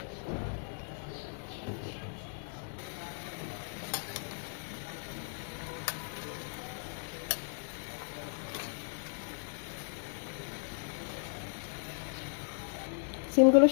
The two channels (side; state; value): right; silent; 54 dB below the other